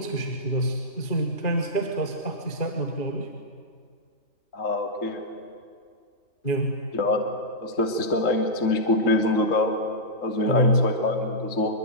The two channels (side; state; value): right; late; 3.7 ms